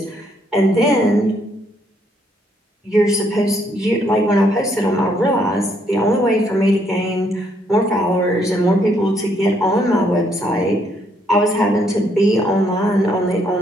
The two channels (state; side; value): normal; both; correlation 0.71